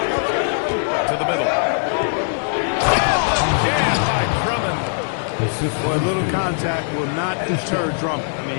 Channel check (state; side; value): silent; right; digital silence